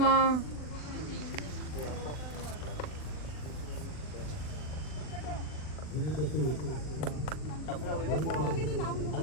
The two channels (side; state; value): right; late; 40 ms